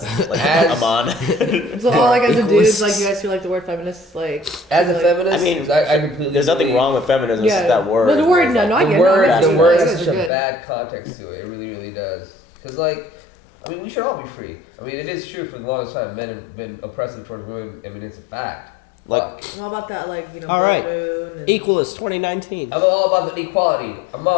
like As- Amon. So all like as a dude, like you guys feel like the word feminist, like As a like, feminist, I mean, I completely there's nothing agree. wrong with feminism. It's just that word. But the word, no, I The get word, it. the word has It's such a good. bad context to it. It really, really does. Because, like, I mean, we should all be free. I mean, it is true for the longest time men have been oppressive towards women. I mean, it's a fact. Like, I'm all about that, like, you know, All blood right. moon and Equalist 2019. I'm all about the equality. I'm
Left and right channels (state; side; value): drops out; right; at 10.3 s